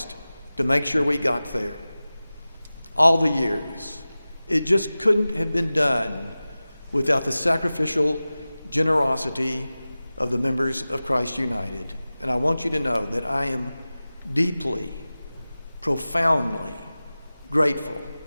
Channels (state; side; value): inverted; both; correlation -0.97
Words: to make sure we got there. All the years. It just couldn't have been done without the sacrificial generosity of the members of Christ United. And I want you to know that I am deeply, profoundly grateful